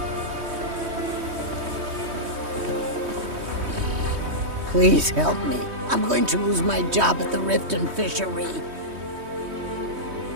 Please help me. I'm going to lose my job at the Riften Fishery.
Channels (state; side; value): late; left; 3.2 ms